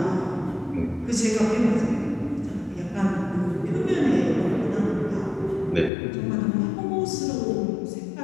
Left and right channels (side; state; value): right; drops out; at 5.9 s